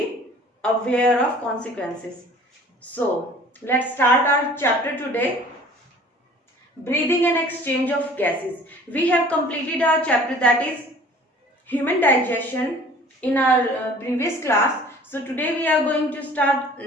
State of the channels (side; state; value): both; normal; correlation 0.49